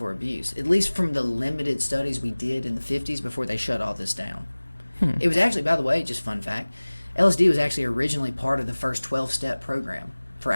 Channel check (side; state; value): both; inverted; correlation -1.00